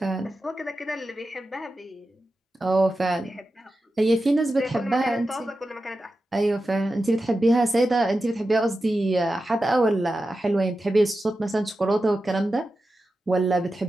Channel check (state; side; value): normal; both; correlation 0.92